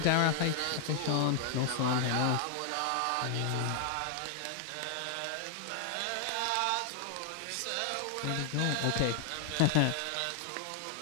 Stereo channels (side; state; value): both; different; correlation 0.00